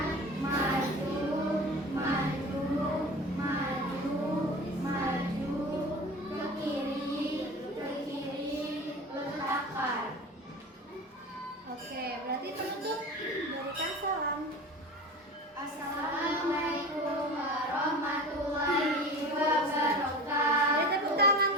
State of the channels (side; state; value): both; normal; correlation 0.35